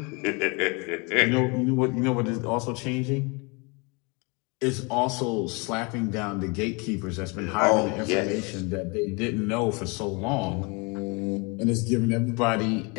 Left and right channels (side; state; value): right; quieter; 30.1 dB